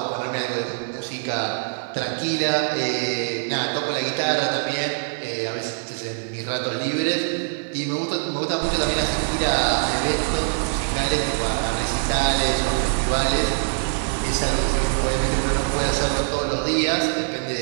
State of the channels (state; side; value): silent; left; digital silence